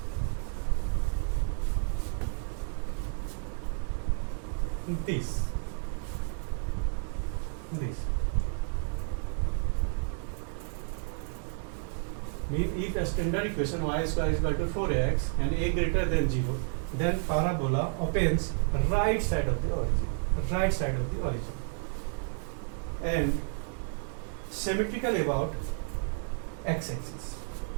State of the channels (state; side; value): silent; left; 57 dB below the other